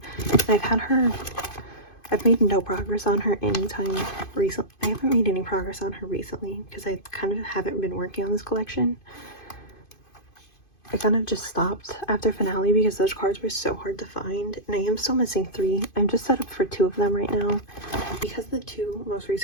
I've made no progress on her anytime recently. I haven't made any progress on her recently because I kind of haven't been working on this collection. I kind of just stopped after finale because those cards were so hard to find, and I am still missing 3. I'm just set up for 2 of them right now because the 2 most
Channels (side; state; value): right; late; 2.5 ms